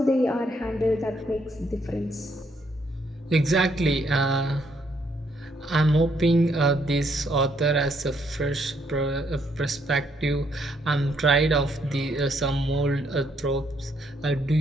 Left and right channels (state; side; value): normal; both; correlation 0.72